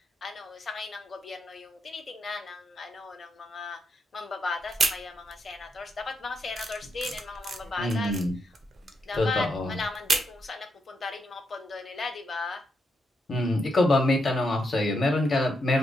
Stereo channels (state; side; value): normal; both; correlation 0.81